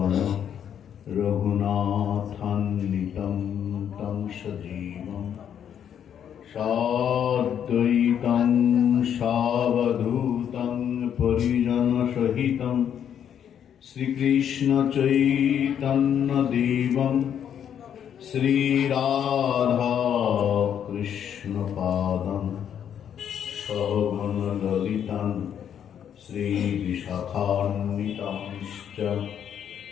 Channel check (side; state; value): right; quieter; 9.0 dB